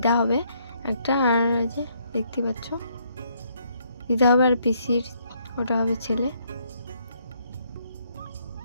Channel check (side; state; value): both; inverted; correlation -0.70